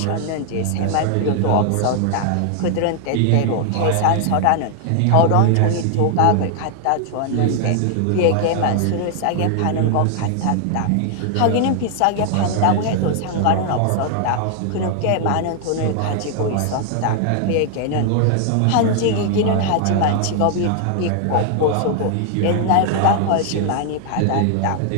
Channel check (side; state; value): both; different; correlation 0.00